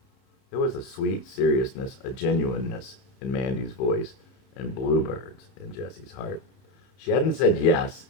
There was a sweet seriousness, a genuineness in Mandy's voice, and bluebirds in Jesse's heart. She hadn't said yes,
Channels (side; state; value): right; late; 31 ms